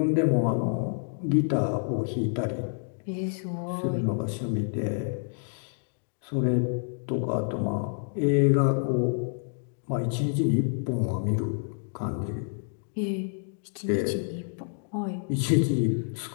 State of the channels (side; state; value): right; silent; digital silence